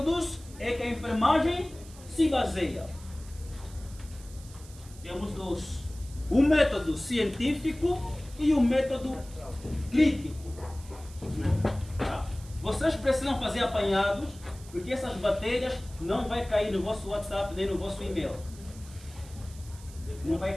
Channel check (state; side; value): noise; right; hiss, 20 dB below the sound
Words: é que a enfermagem se baseia? Temos dois. O método científico e o método crítico. Vocês precisam fazer apanhados, porque essas matérias não vai cair no vosso WhatsApp nem no vosso e-mail. Não vai